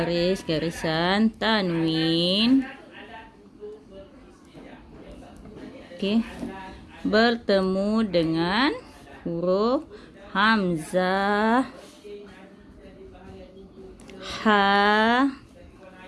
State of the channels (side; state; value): both; identical; correlation 1.00